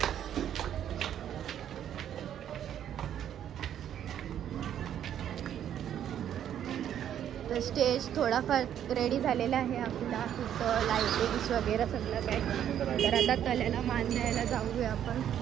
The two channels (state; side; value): quieter; left; 10.1 dB